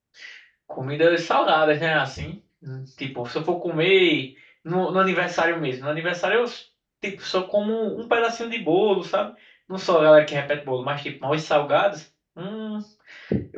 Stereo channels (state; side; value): identical; both; correlation 1.00